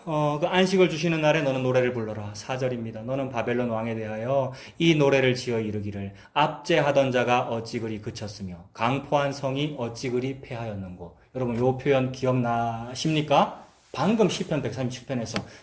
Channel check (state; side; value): identical; both; correlation 1.00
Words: 그 안식을 주시는 날에 너는 노래를 불러라. 4절입니다. 너는 바벨론 왕에 대하여 이 노래를 지어 이르기를 압제하던 자가 어찌 그리 그쳤으며 강포한 성이 어찌 그리 패하였는고. 여러분 요 표현 기억나십니까? 방금 시편 137편에서